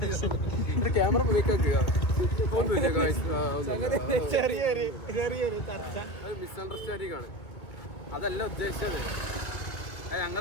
ക്യാമറ മിസ്അണ്ടർസ്റ്റാൻഡിംഗ് ആണ് അതല്ല ഉദ്ദേശിച്ചത് അത്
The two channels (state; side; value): late; right; 2.5 ms